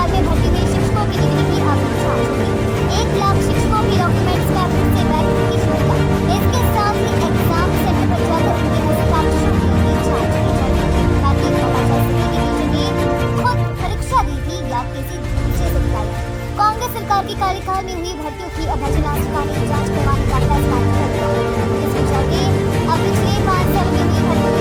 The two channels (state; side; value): identical; both; correlation 1.00